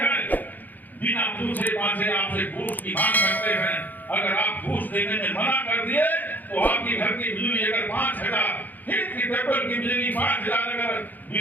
बिना पूछे पाछे आपसे घूस की मांग करते हैं। अगर आप घूस देने में मना कर दिए तो आपके घर की बिजली अगर 5,000 की पेपर की बिजली 5,000 अगर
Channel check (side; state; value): right; late; 0.084 ms